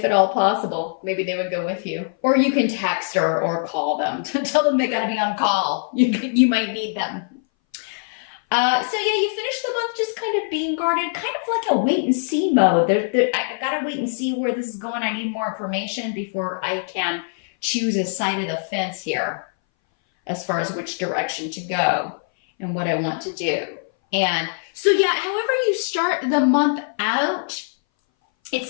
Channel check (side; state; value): right; silent; 61 dB below the other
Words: at all possible, maybe they would go with you. Or you can text or call them to tell them they got to be on call. You might need them. So yeah, you finish the month just kind of being guarded, kind of like a wait and see mode. I got to wait and see where this is going. I need more information before I can choose a side of the fence here as far as which direction to go and what I want to do. And so yeah, however you start the month out, it